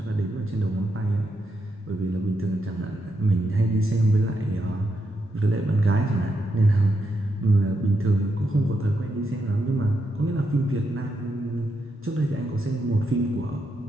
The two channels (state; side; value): normal; both; correlation 0.82